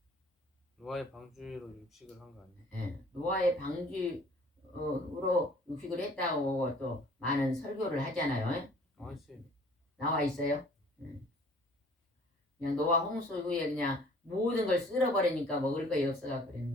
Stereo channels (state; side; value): normal; both; correlation 0.53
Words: 육식을 한 거 아니에요? 노아의 방주로 육식을 했다고 또 많은 설교를 하잖아요. 나와 있어요. 그냥 노아 홍수 후에 그냥 모든 걸 쓸어버리니까 먹을 것이 없어서